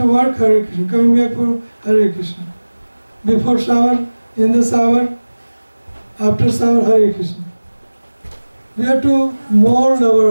work, Hare Krishna. Coming back for Hare Krishna. Before shower, in the shower, after shower, Hare Krishna. We have to mold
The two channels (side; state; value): both; inverted; correlation -1.00